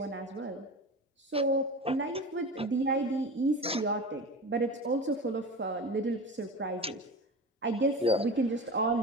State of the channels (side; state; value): both; normal; correlation 0.30